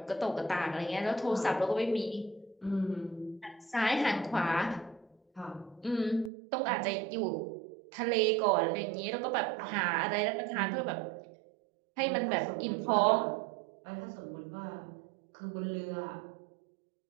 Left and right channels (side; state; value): left; drops out; at 6.3 s